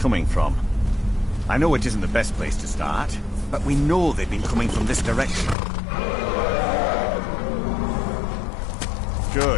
from. I know it isn't the best place to start, but we know they've been coming from this direction.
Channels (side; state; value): right; drops out; at 5.6 s